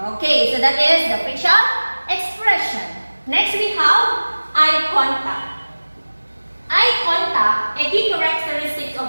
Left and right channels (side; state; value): both; inverted; correlation -1.00